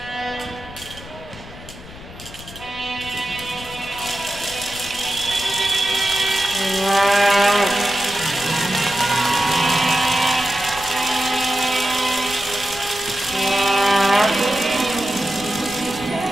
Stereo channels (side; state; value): left; noise; rumble, 16 dB below the sound